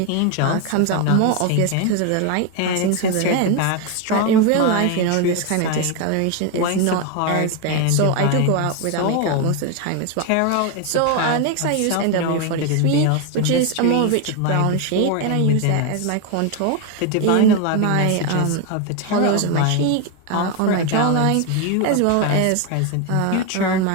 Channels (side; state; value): both; different; correlation 0.01